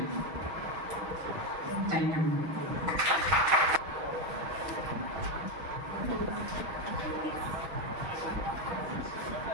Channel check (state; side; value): late; left; 6.3 ms